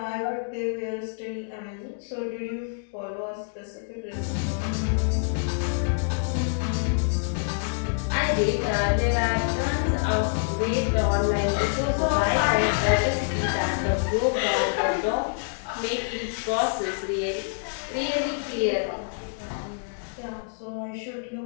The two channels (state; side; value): silent; right; digital silence